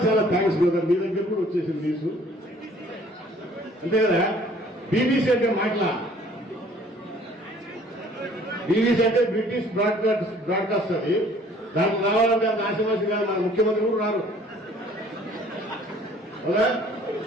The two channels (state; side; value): normal; both; correlation 0.56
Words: చాలా థ్యాంక్స్ బ్రదర్, మీ దగ్గర కూడా వచ్చేసింది న్యూస్. అంతే కదా? బీబీసీ అంటే మాటలా, బీబీసీ అంటే బ్రిటిష్ బ్రాడ్కాస్ట్. అది దానికి రావాలంటే అంత ఆశమాసి కాదు. మన ముఖ్యమంత్రి కూడా రారు కదా,